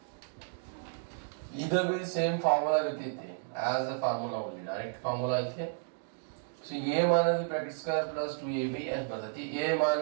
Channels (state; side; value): silent; left; digital silence